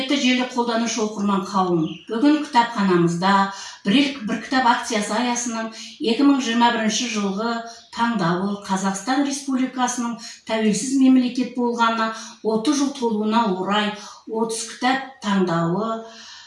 желі қолданушы оқырман қауым, бүгін кітапханамызда бір кітап акциясы аясының 2021 жылғы таңдауы Қазақстан Республикасының тәуелсіз мемлекет болғанына 30 жыл толуына орай 30 кітап таңдауы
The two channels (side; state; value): both; identical; correlation 1.00